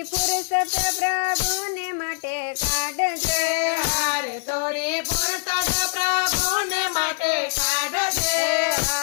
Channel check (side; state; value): right; silent; 58 dB below the other